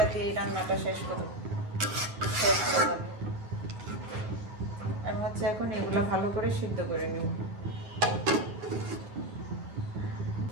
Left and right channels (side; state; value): left; late; 9.5 ms